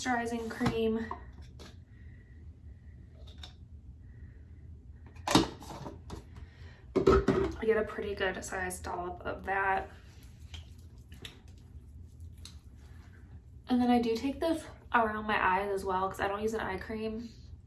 cream. I get a pretty good sized dollop of that. And then I do take this around my eyes as well because I don't use an eye cream.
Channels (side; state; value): both; identical; correlation 1.00